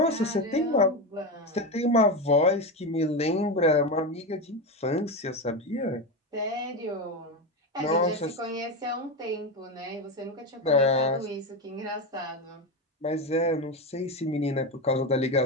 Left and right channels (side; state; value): both; normal; correlation 0.16